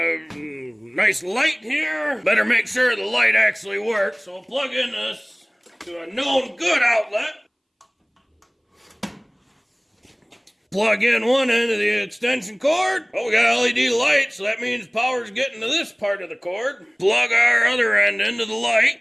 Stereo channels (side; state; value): both; identical; correlation 1.00